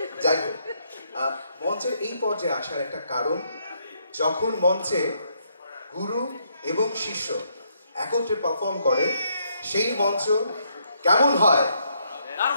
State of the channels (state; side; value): inverted; both; correlation -0.74